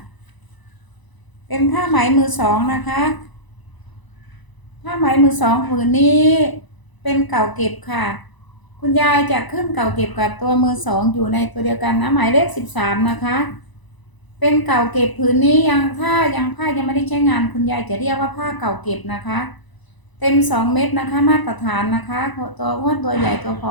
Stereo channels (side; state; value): right; late; 1.0 ms